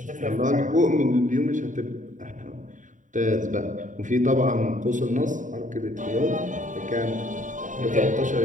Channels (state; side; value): late; left; 0.37 ms